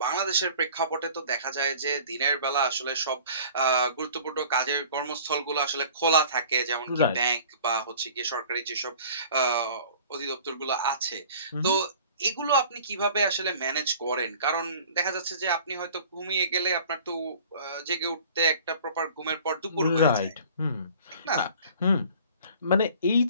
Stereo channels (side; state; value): both; inverted; correlation -0.47